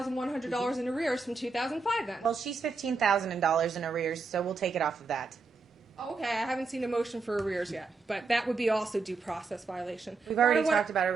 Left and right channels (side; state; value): left; quieter; 4.2 dB